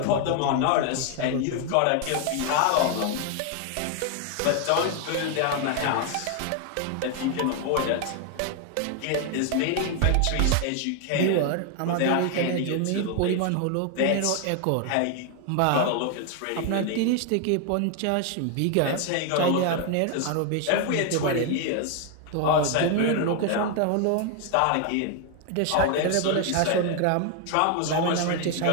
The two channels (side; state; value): both; different; correlation 0.01